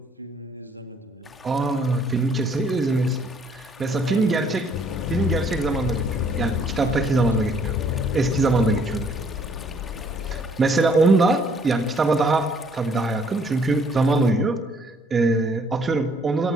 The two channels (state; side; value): normal; both; correlation 0.63